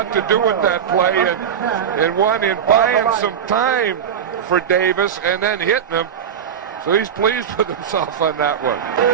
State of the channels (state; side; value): quieter; left; 8.2 dB